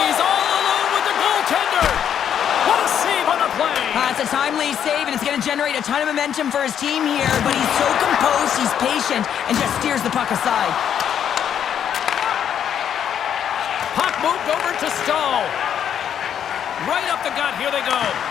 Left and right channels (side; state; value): right; quieter; 9.0 dB